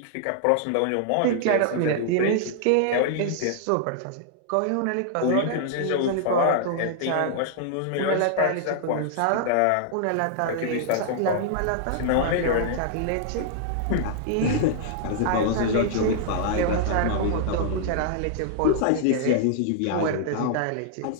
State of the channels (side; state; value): both; different; correlation -0.01